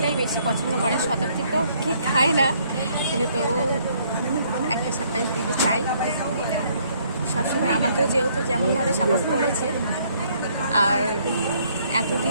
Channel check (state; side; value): inverted; both; correlation -0.66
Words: বেশি পছন্দ করে, শতাব্দী তো কেক খায় না, কিন্তু তবু একটা সারপ্রাইজ দিতে চাই। সবসময় আমাকেও যেহেতু যেমনভাবে সাপোর্ট করেছে, আর